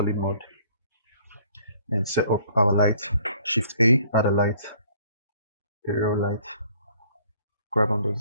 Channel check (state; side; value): inverted; both; correlation -0.58